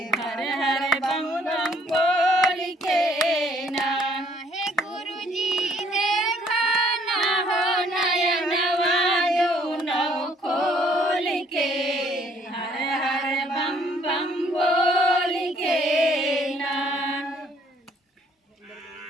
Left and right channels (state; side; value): normal; both; correlation 0.63